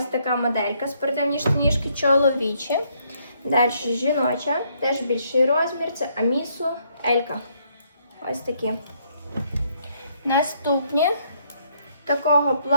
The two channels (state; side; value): inverted; both; correlation -0.71